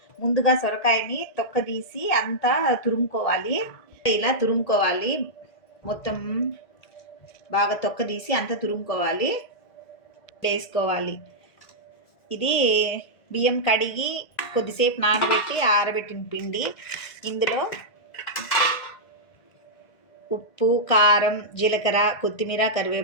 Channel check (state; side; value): late; right; 1.8 ms